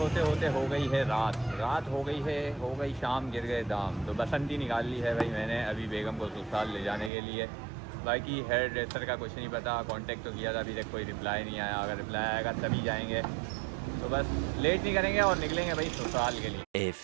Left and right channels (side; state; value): left; drops out; at 7.1 s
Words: होते हो गई है रात हो गई शाम, गिर गए दाम। तो बसंती निकाल ली है भाई मैंने अभी बेगम को ससुराल ले जाने के लिए। बाकी हेयर ड्रेसर का कुछ नहीं पता, कांटेक्ट तो किया था, अभी तक कोई रिप्लाई नहीं आया। अगर रिप्लाई आएगा तभी जाएंगे। तो बस लेट नहीं करेंगे और निकलेंगे भाई ससुराल के लिए। A